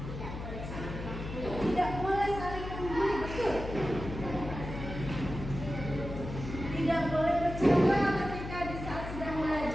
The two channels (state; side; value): noise; left; hum, 8 dB below the sound